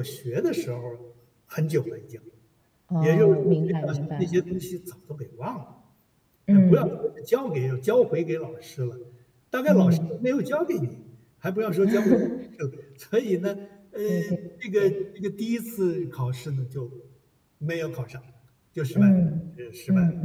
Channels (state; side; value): identical; both; correlation 1.00